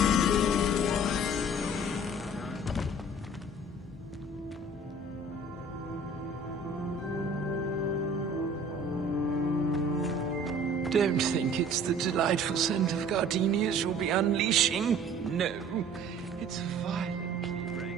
Don't think it's the delightful scent of gardenias you'll be unleashing. No, it's violently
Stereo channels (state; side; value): normal; both; correlation 0.49